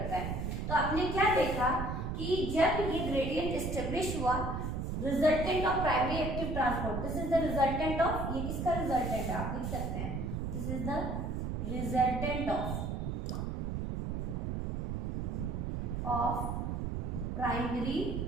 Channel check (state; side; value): noise; right; rumble, 2 dB below the sound